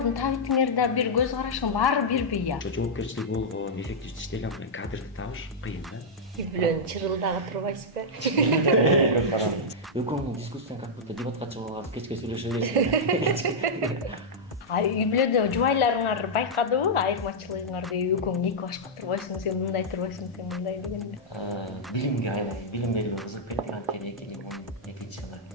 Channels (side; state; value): both; normal; correlation -0.07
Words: табитиңерде бир көз карашың баары бирби я? Жоопкерчилиги болгон, эффективдүү иштеген кадрды табыш кыйын да. Үй бүлөнү чырылдагы турбайсызбы? Экөөңүн дискуссияң как будто дебатка чыгып алып кечке сүйлөшө бересиң. Үй бүлөдө жубайларыңар байкадыбы айырмачылыгыңарды? Экөөң эки башка турбайсың, сен мындай турбайсың, сен мындай дегенде. Билимге айлай, билим берүүгө кызыгып кеттик, анткени 2012 жылы